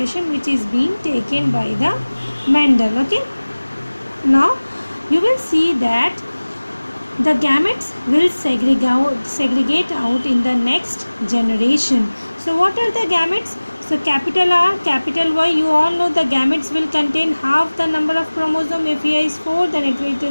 which is being taken by the Mendel. Okay, now you will see that the gametes will segregate out in the next generation. So what are the gametes? So capital R, capital Y, you all know the gametes will contain half the number of chromosome. If here is 4, then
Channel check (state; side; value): inverted; both; correlation -1.00